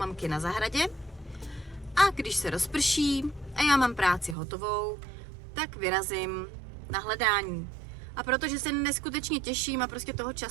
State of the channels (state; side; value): drops out; left; at 4.4 s